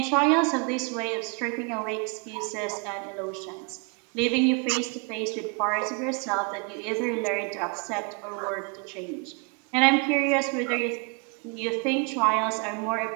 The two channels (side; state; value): left; quieter; 34.4 dB